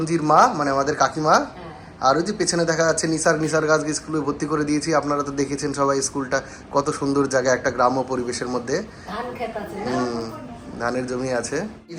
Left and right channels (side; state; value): both; identical; correlation 1.00